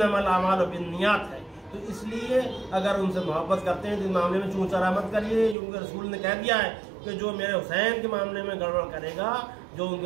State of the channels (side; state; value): left; drops out; at 5.6 s